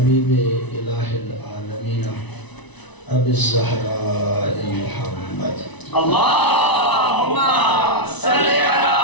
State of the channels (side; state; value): right; late; 1.0 ms